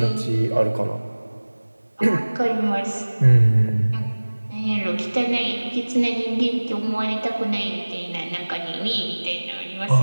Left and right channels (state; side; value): inverted; both; correlation -1.00